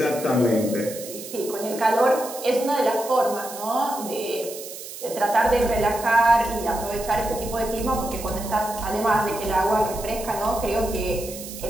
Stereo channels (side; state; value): right; noise; hiss, 12 dB below the sound